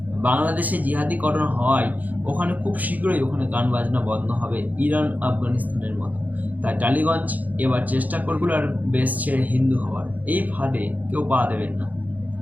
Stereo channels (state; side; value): late; left; 0.080 ms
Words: বাংলাদেশে জিহাদিকরণ হওয়ায় ওখানে খুব শীঘ্রই ওখানে গান বাজনা বন্ধ হবে, ইরান আফগানিস্তানের মতো। তাই টালিগঞ্জ এবার চেষ্টা করবে আর বেশ ছেড়ে হিন্দু হওয়ার। এই ফাঁদে কেউ পা দেবেন না।